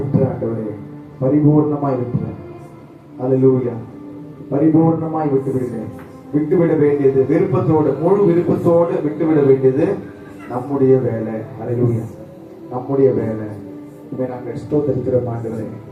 ஆண்டவரே பரிபூர்ணமாய் விட்டுறேன். ஹல்லேலூயா. பரிபூர்ணமாய் விட்டுவிடுகிறேன். விட்டுவிட வேண்டியது விருப்பத்தோடு, முழு விருப்பத்தோடு விட்டுவிட வேண்டியது நம்முடைய வேலை. ஹல்லேலூயா. நம்முடைய வேலை. நாங்கள் ஸ்தோத்திரிக்கிறோம் ஆண்டவரே.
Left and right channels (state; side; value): identical; both; correlation 1.00